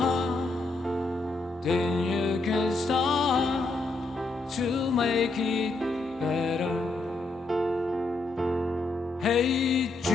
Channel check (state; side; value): quieter; right; 3.2 dB